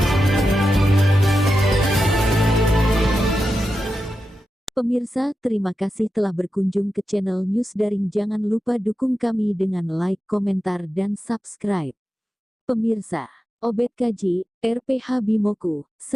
Pemirsa, terima kasih telah berkunjung ke channel News Daring. Jangan lupa dukung kami dengan like, komentar, dan subscribe. Pemirsa, Obed Kaji, RPH Bimoku,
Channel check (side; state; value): both; normal; correlation 0.90